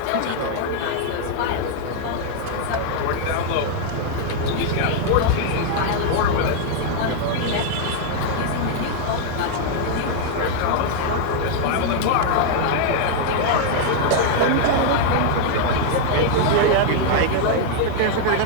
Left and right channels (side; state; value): both; different; correlation 0.00